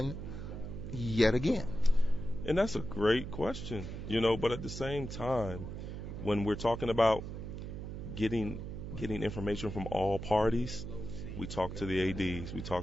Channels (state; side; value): noise; right; hum, 7 dB below the sound